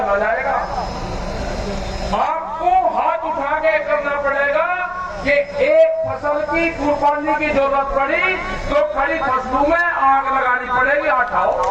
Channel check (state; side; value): identical; both; correlation 1.00